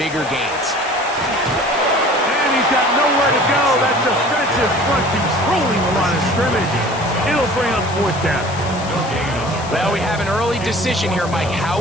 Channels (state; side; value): noise; left; hiss, 15 dB below the sound